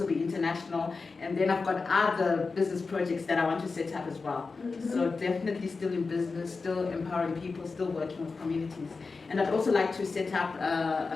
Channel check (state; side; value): quieter; right; 4.3 dB